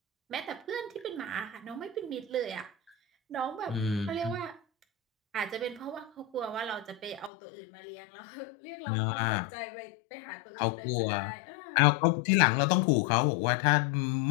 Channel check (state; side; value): drops out; right; at 7.3 s